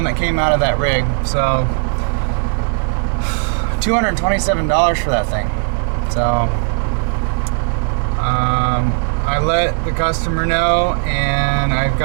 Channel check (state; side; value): silent; left; digital silence